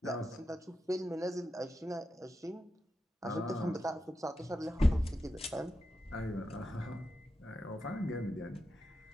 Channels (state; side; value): normal; both; correlation 0.88